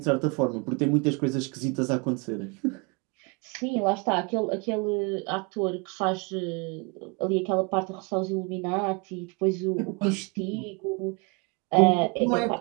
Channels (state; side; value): quieter; left; 30.6 dB